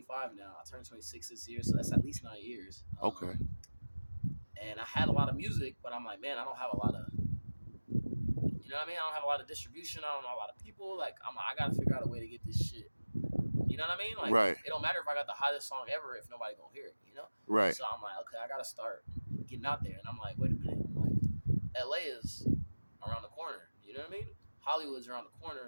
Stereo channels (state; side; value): inverted; both; correlation -1.00